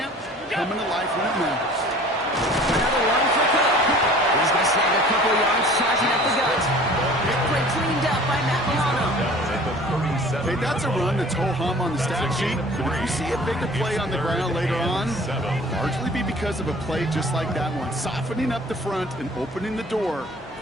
coming to life when it matters. Another one for Cook. He's going to snag a couple yards, charging up the gut. Big play cleaned up by Matt Milano. Hey, that's a run that's ho-hum on the stat sheet, but if you see a bigger play on the ground later on, largely be because of a play just like that one, softening up the front and opening the door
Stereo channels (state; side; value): normal; both; correlation 0.47